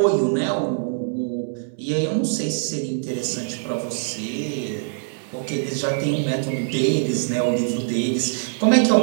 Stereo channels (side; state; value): left; silent; 63 dB below the other